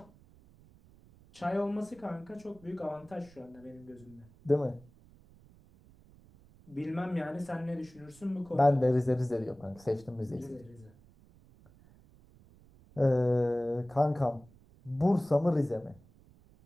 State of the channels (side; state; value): right; noise; rumble, 26 dB below the sound